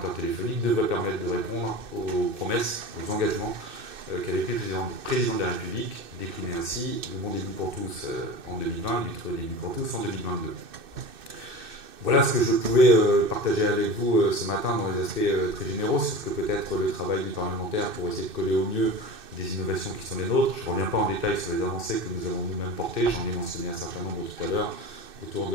téléphoniques devrait permettre de répondre aux promesses, aux engagements qu'avait pris le président de la République, décliné ainsi le bon début pour tous en 2020 et le très début pour tous en 2022. Voilà ce que je pouvais partager avec vous ce matin dans les aspects très généraux sur ce que peut être le travail du parlementaire pour essayer de coller au mieux des innovations qui sont les nôtres. Je ne reviens pas en détail sur les avancées que nous avons nous-mêmes portées, j'en ai mentionné un certain nombre tout à l'heure autour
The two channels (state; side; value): late; left; 2.6 ms